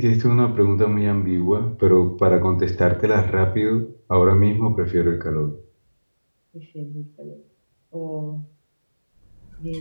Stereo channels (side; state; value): both; inverted; correlation -1.00